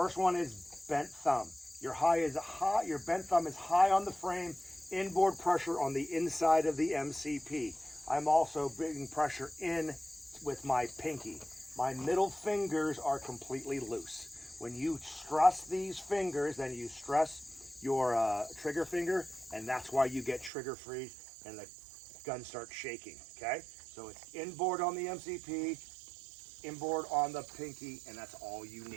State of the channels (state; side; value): drops out; left; at 20.5 s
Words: one is bent thumb. Your bent thumb is high on the frame, inboard pressure on the inside of the MCP. I'm also bringing pressure in with my pinky. My middle fingers are completely loose. When you stress these fingers, then you stress your trigger finger, and that's why you get trigger freeze and the gun starts shaking, okay? So it's inboard on the MCP, inboard on the pinky, and that's all you